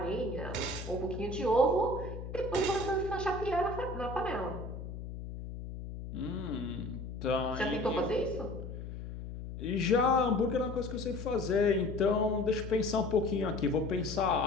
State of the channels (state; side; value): noise; left; hum, 9 dB below the sound